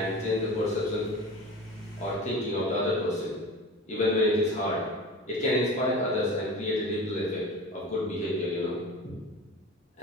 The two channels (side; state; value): both; normal; correlation 0.34